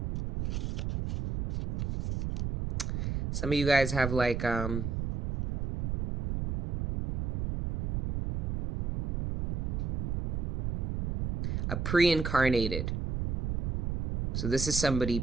Some of you guys have like a pre-incarnated. So this is somebody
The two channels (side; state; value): right; noise; rumble, 1 dB below the sound